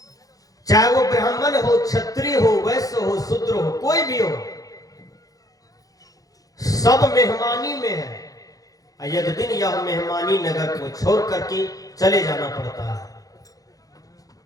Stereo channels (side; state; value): right; late; 0.17 ms